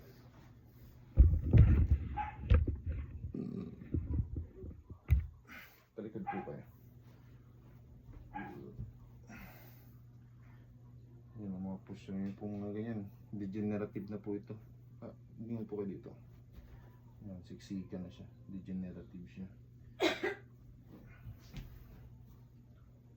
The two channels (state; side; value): identical; both; correlation 1.00